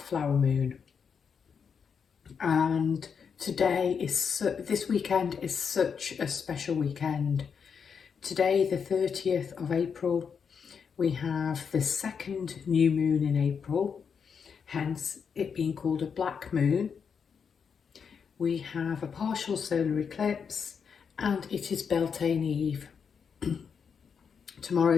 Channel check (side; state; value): right; quieter; 6.5 dB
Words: Flower Moon. And this weekend is such a special weekend. Today, the 30th of April, we have the second new moon in April, hence it being called a black moon. We have a partial solar eclipse and it is Beltane Eve. Tomorrow